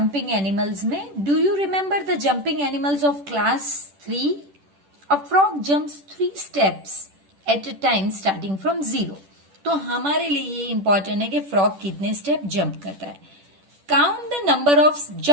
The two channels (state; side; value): late; left; 10 ms